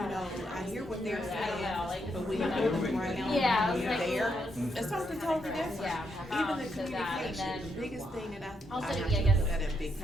I hear what they're saying, but when you're around, when you're there, it's something totally different. Even the communication, the biggest thing that I have to put that in big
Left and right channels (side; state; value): both; normal; correlation 0.78